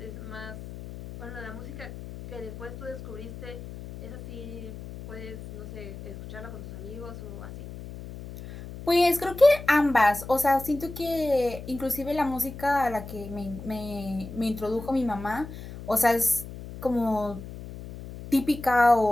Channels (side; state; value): left; noise; hum, 12 dB below the sound